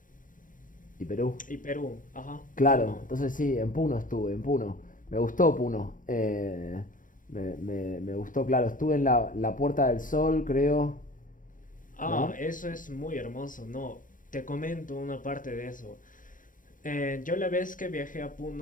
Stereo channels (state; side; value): late; right; 0.39 ms